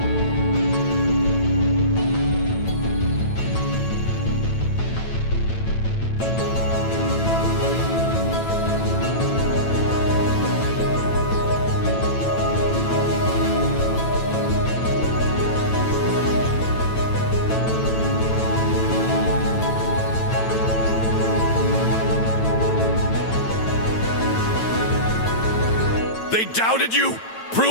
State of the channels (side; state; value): right; late; 9.0 ms